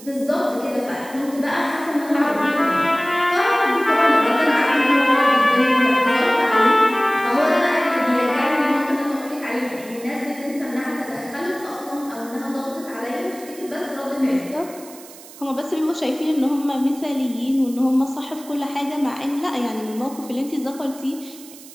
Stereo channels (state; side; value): noise; right; hiss, 19 dB below the sound